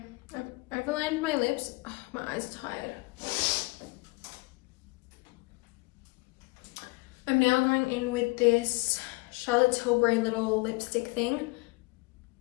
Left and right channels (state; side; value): quieter; right; 25.7 dB